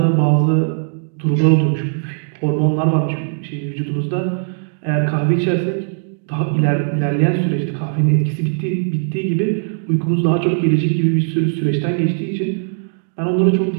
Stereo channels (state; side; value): silent; left; digital silence